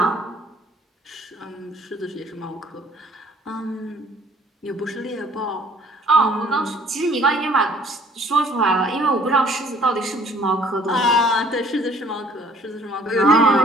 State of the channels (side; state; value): both; normal; correlation 0.57